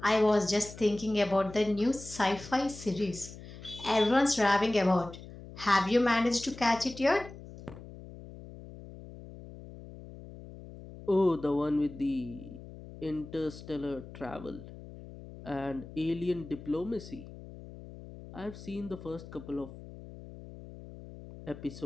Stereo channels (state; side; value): noise; left; hum, 15 dB below the sound